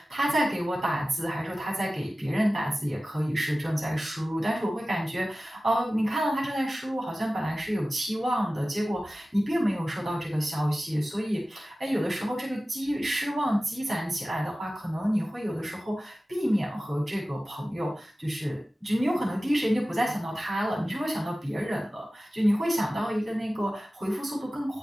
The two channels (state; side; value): normal; both; correlation 0.96